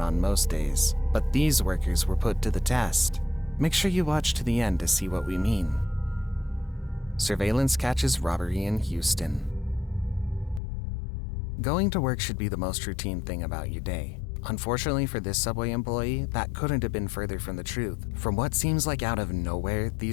most days, but these workers were put to the test. Make sure you watch to the end to see what we mean. Surveillance catches robbery in Houston. Going to work should be the most routine thing about your day. Unfortunately for this Subway employee, that couldn't have been further from the truth. From what seems like out of nowhere,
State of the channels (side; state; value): right; drops out; at 10.6 s